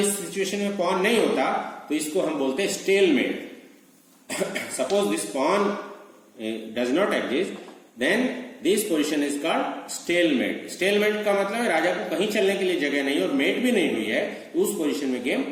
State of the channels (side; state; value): both; identical; correlation 1.00